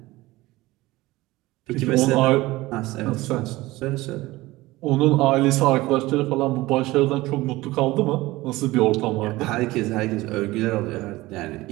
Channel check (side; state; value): left; quieter; 19.2 dB